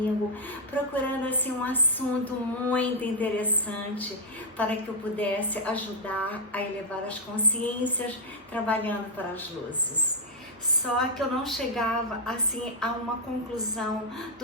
procurando assim um assunto muito interessante para que eu pudesse ajudar a elevar as consciências trabalhando para as luzes. Só que eu não chegava assim a uma conclusão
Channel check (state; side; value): normal; both; correlation -0.04